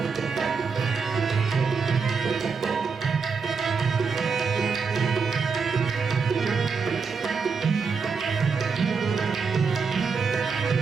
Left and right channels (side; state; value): left; quieter; 5.3 dB